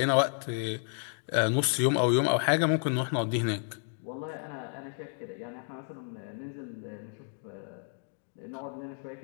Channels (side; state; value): right; silent; 57 dB below the other